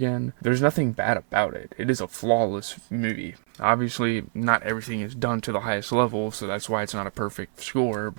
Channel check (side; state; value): left; silent; 61 dB below the other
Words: There's nothing bad about it. It is a flawless movie. Obviously, not everything is done to the highest level, so that's why it's not a perfect score,